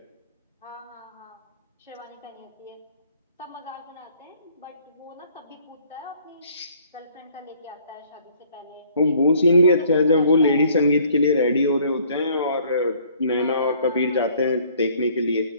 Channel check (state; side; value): inverted; both; correlation -0.59